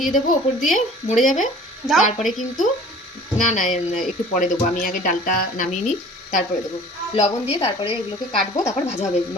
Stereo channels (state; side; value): normal; both; correlation 0.47